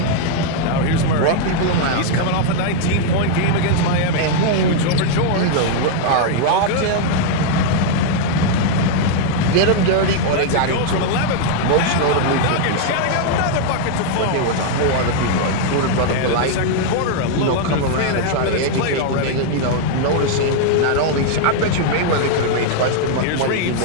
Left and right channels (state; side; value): different; both; correlation 0.00